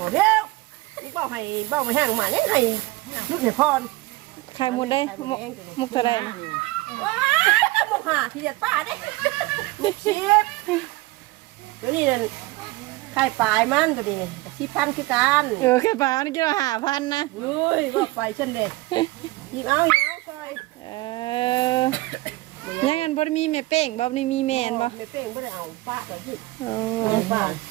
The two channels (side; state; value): left; quieter; 20.6 dB